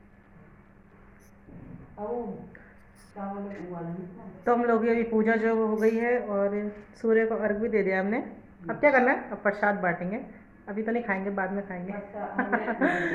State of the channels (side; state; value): both; identical; correlation 1.00